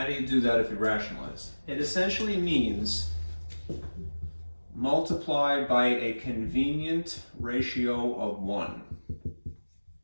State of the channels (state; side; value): inverted; both; correlation -1.00